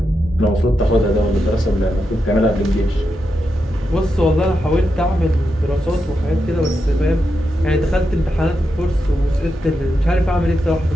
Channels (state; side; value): normal; both; correlation 0.86